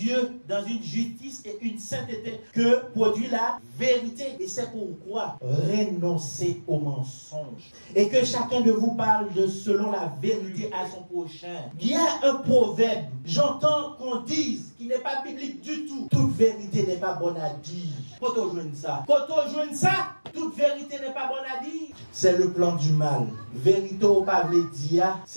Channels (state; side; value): inverted; both; correlation -1.00